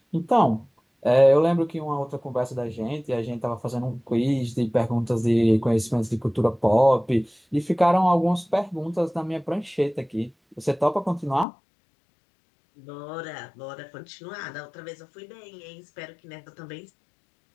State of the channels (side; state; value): right; drops out; at 11.5 s